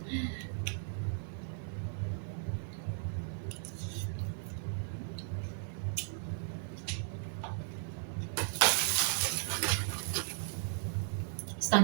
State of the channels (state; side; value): silent; left; 53 dB below the other